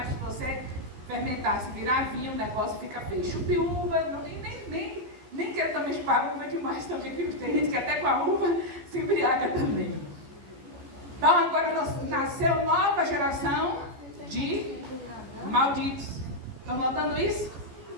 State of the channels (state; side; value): late; left; 14 ms